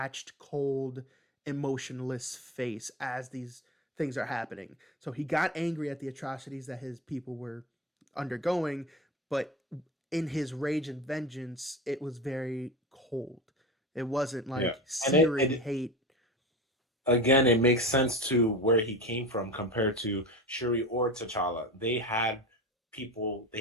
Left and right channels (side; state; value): both; normal; correlation 0.29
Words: cold, emotionless face as these things are happening. So he got angry at the atrocities that his people were undergoing, but in his rage and vengeance, it was very cold. It wasn't Yeah. like And searing hate. again, it makes sense to where he came from compared to Shuri or T'Challa. They had